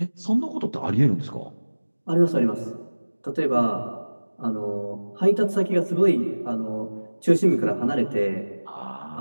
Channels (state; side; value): inverted; both; correlation -1.00